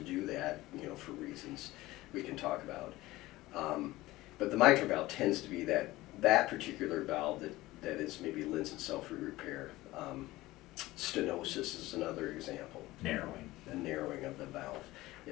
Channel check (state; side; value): quieter; right; 18.2 dB